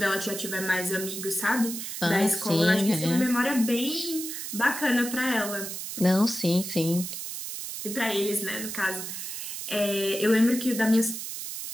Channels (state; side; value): noise; right; hiss, 7 dB below the sound